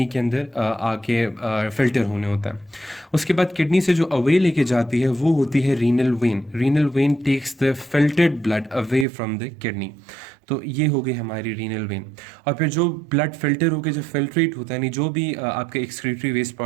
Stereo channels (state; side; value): drops out; left; at 9.1 s